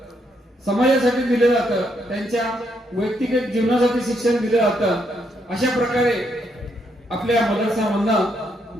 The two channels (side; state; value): both; normal; correlation 0.76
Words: समाजासाठी दिले जातं, त्यांच्या वैयक्तिक जीवनासाठी शिक्षण दिले जातं. अशा प्रकारे आपल्या मदरसामधनं